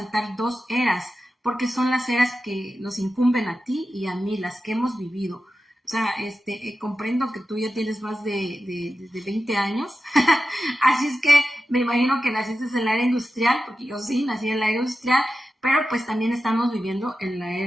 2 eras, porque son las eras que nos incumben a ti y a mí, las que hemos vivido. O sea, comprendo que tú ya tienes más de 20 años, así es que me imagino que naciste en la era industrial, porque yo sí nací en la era industrial, pero pues también estamos viviendo en la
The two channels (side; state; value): both; normal; correlation 0.92